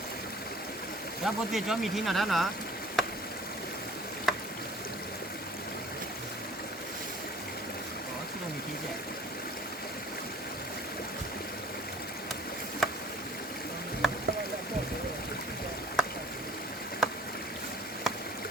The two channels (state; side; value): normal; both; correlation 0.49